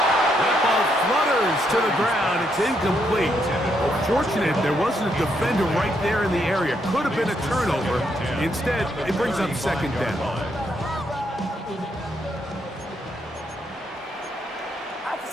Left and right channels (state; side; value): normal; both; correlation 0.76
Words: That ball flutters to the ground. It's incomplete. Fortunate there wasn't a defender right there in the area. Could have been a turnover. Instead, it brings up second down.